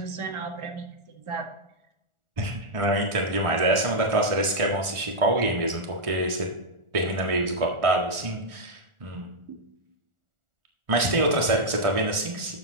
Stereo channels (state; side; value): late; left; 1.4 ms